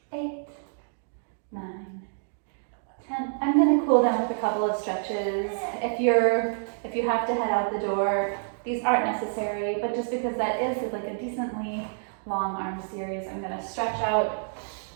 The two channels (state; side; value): silent; left; digital silence